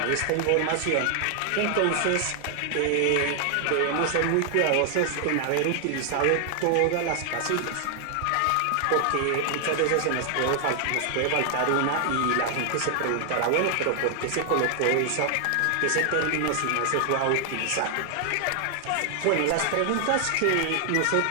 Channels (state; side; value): different; both; correlation 0.00